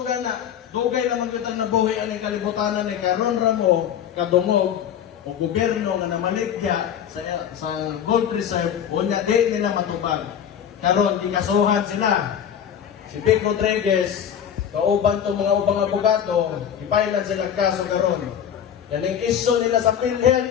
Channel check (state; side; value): quieter; right; 9.0 dB